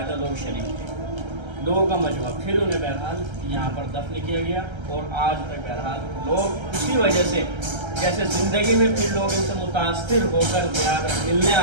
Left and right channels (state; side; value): late; left; 1.3 ms